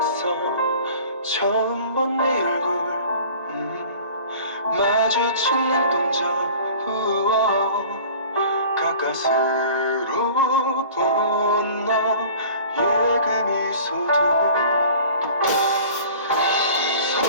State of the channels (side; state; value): both; inverted; correlation -0.44